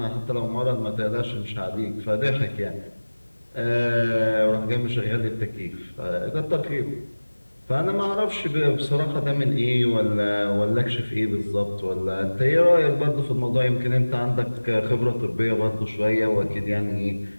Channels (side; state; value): both; inverted; correlation -1.00